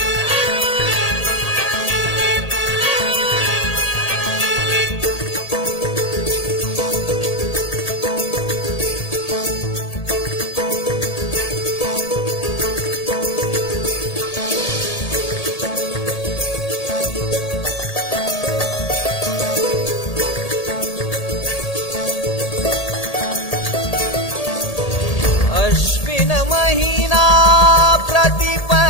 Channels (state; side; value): late; right; 1.8 ms